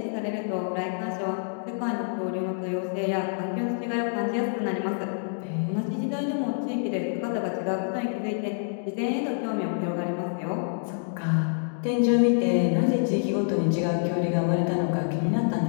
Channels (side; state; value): right; silent; digital silence